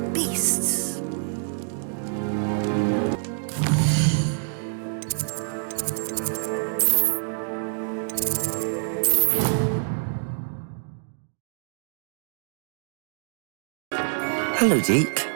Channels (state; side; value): silent; left; digital silence